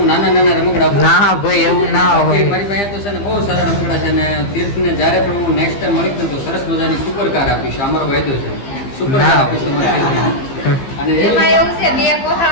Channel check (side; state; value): right; late; 15 ms